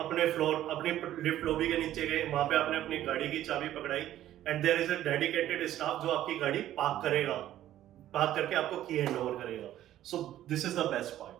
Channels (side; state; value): left; quieter; 12.8 dB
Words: फ्लोर, अपनी लिफ्ट लॉबी के नीचे गए, वहां पे आपने अपनी गाड़ी की चाबी पकड़ाई and there is a dedicated staff जो आपकी गाड़ी पार्क करेगा, पार्क करके आपको की हैंड ओवर करेगा। So this is the best